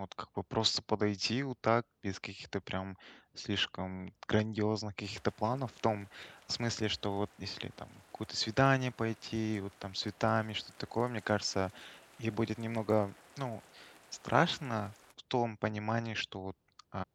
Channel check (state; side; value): identical; both; correlation 1.00